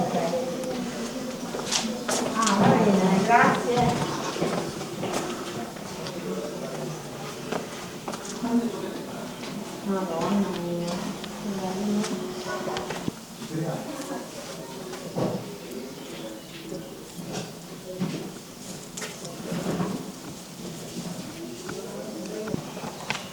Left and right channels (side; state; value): both; identical; correlation 1.00